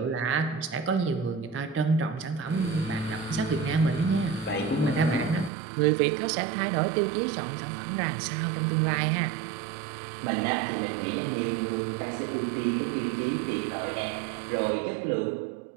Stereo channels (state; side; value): drops out; left; at 5.5 s